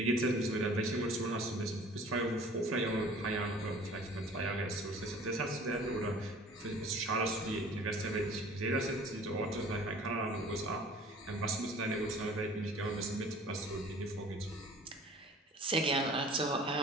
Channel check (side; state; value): both; normal; correlation 0.48